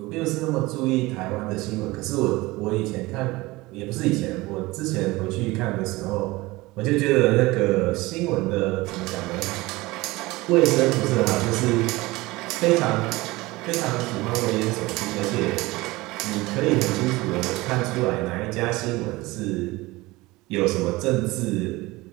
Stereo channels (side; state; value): left; quieter; 20.9 dB